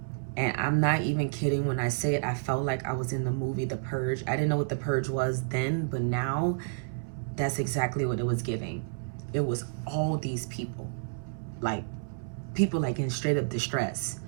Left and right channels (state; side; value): silent; left; 58 dB below the other